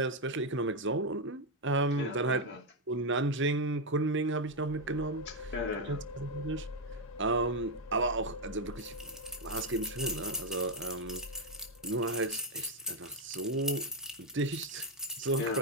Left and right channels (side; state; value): both; normal; correlation 0.03